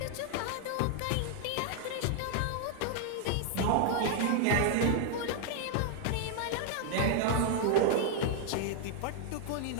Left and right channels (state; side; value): different; both; correlation 0.00